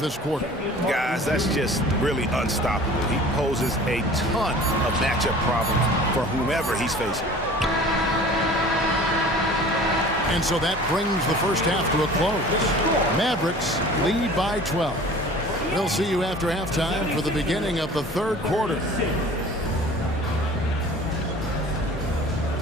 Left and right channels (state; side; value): normal; both; correlation 0.44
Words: quarter. Guys, that's just really unstoppable. He poses a ton of matchup problems for whomever he's facing. And so that brings the first half to a close. Mavericks lead by 12. We'll see you after halftime for the beginning of the third quarter.